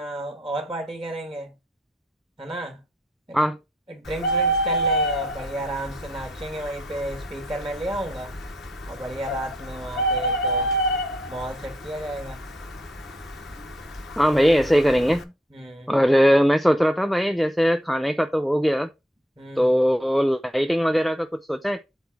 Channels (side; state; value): both; normal; correlation 0.72